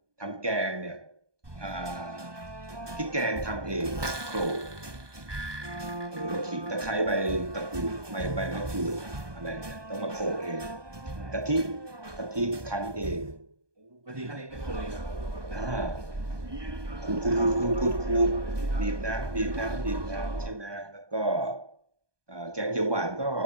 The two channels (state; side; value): late; left; 1.2 ms